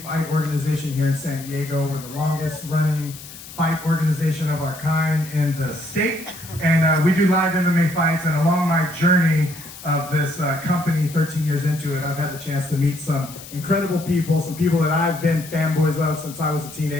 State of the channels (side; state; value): left; noise; hiss, 15 dB below the sound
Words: fight organization here in San Diego. We're the longest running fight organization of our kind in the state. And we do live MMA fights. And along my journey of this company, 13 years into it, I've had the chance to meet some incredible people, some people that I've been fanboys of since I was a